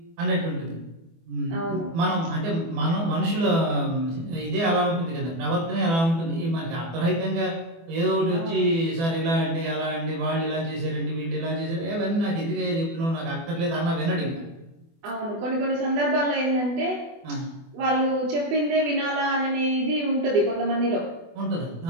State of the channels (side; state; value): left; late; 24 ms